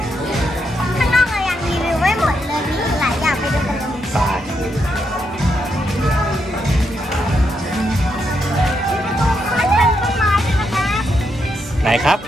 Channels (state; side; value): normal; both; correlation 0.80